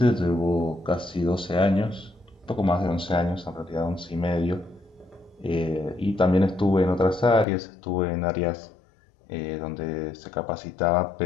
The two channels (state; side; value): drops out; right; at 7.5 s